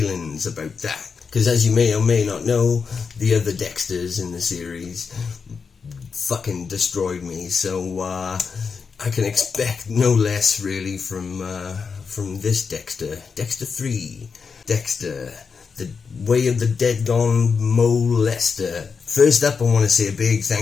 about that. Because as you may or may not know, the other Dexters in the series fucking destroyed me. So I can expect no less really from this Dexter. Dexter 3. Dexter. The Way of the Dead Gone Molester. First up, I want to say a big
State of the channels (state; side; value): quieter; right; 5.5 dB